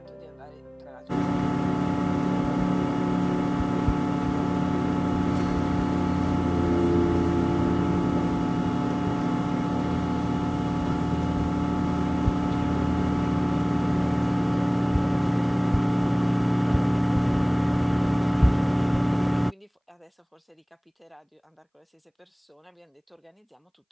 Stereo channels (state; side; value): identical; both; correlation 1.00